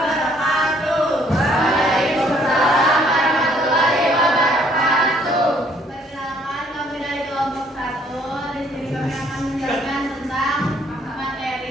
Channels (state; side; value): normal; both; correlation 0.63